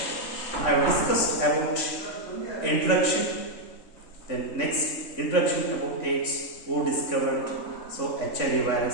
I discussed about introduction, then next introduction about AIDS, who discovered, so HIV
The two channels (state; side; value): late; right; 3.5 ms